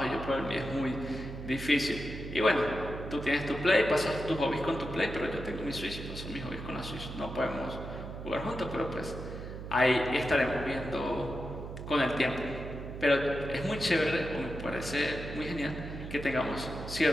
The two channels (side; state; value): right; noise; hum, 9 dB below the sound